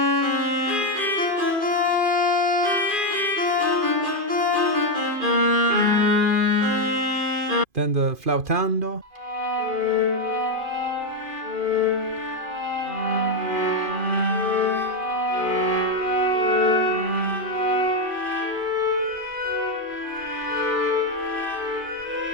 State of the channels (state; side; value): late; left; 2.5 ms